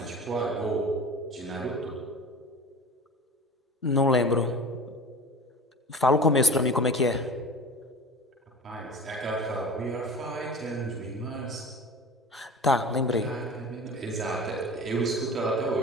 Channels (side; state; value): both; normal; correlation 0.36